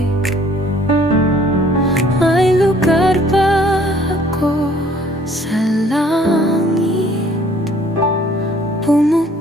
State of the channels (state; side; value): normal; both; correlation 0.58